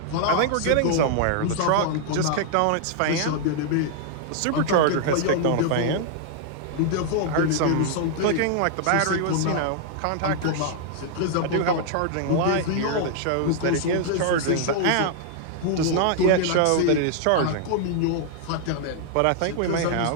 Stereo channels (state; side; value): different; both; correlation -0.01